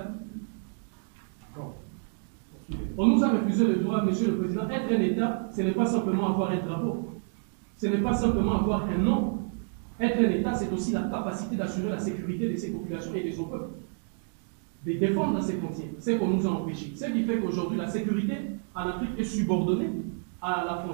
Bon. On nous a refusé le droit, Monsieur le Président. Être un État, ce n'est pas simplement avoir un drapeau. Ce n'est pas simplement avoir un nom. Être un État, c'est aussi la capacité d'assurer la sécurité de ses populations et de son peuple. De défendre ses frontières. C'est qu'on nous a empêchés. Ce qui fait qu'aujourd'hui, la sécurité en Afrique est subordonnée à la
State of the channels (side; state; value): left; silent; 59 dB below the other